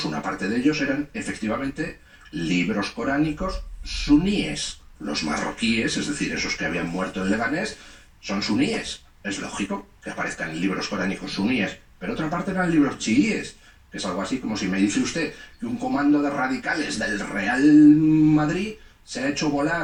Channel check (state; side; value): identical; both; correlation 1.00